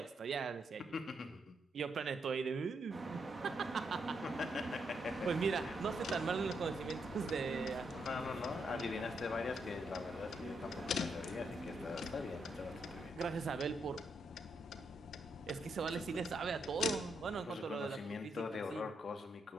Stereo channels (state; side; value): normal; both; correlation 0.79